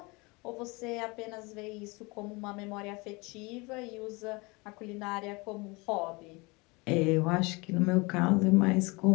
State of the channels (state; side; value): quieter; right; 26.3 dB